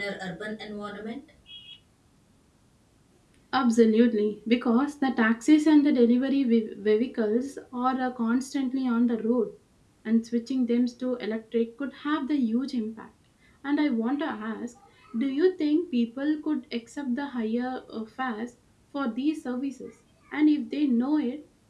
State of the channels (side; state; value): both; identical; correlation 1.00